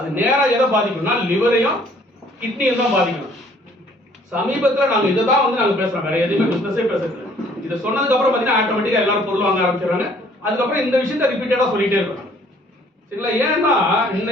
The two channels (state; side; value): normal; both; correlation 0.59